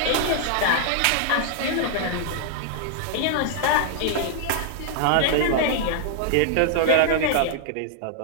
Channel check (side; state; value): both; different; correlation -0.01